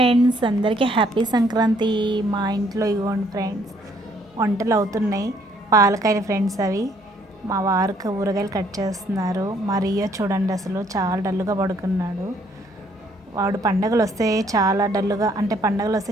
అందరికీ హ్యాపీ సంక్రాంతి. మా ఇంట్లో ఇవ్వండి ఫ్రెండ్స్, వంటలు అవుతున్నాయి. పాలకాయలు ఫ్రెండ్స్ అవి. మా వారికి ఊరగాయలు కట్ చేస్తున్నారు. మా రియో చూడండి, అసలు చాలా డల్లుగా పడుకున్నాడు. వాడు పండగలు వస్తే చాలా డల్లుగా, అంటే పండగలు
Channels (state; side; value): normal; both; correlation 0.65